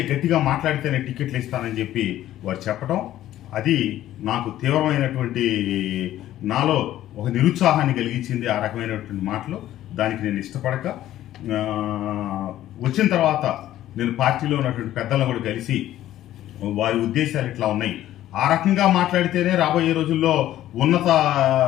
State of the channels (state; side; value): quieter; right; 13.3 dB